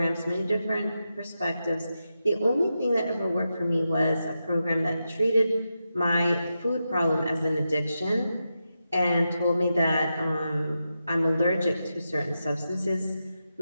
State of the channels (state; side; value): inverted; both; correlation -0.88